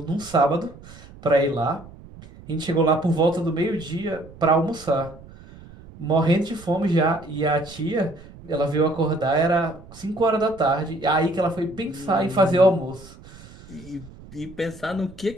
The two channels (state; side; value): noise; right; rumble, 19 dB below the sound